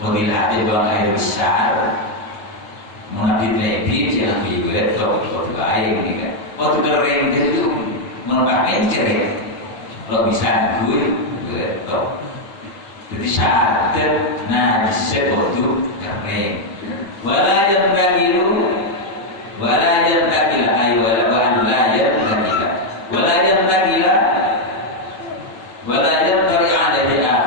bila ada buang air besar mengabit lebih jangan dibuat waktu air ini kan waktu kering itu menambah mencret kalau bisa gue betul jadi syarat najis waktu kering wala yang tagilu wala yang tagila ay wala yang tagila wala yang tagila wala yang tari ada di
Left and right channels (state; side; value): late; right; 9.6 ms